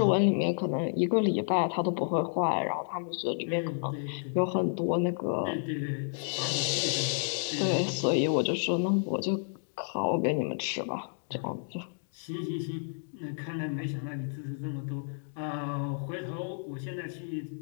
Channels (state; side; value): silent; right; digital silence